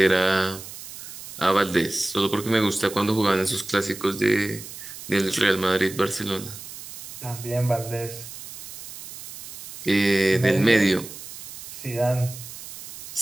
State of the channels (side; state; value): right; noise; hiss, 13 dB below the sound